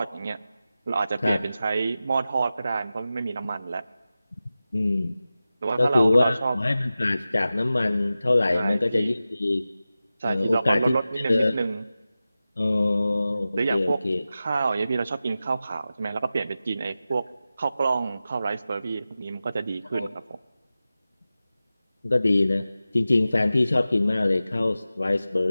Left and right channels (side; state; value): both; inverted; correlation -0.94